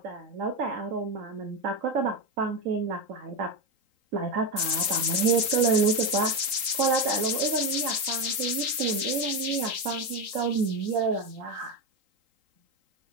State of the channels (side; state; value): left; late; 3.8 ms